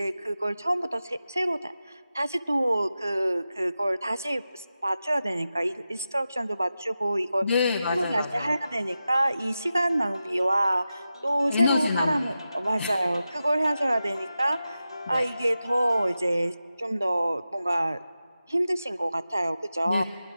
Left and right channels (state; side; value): inverted; both; correlation -0.92